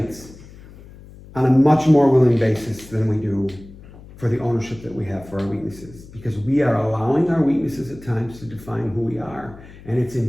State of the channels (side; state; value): left; noise; hum, 19 dB below the sound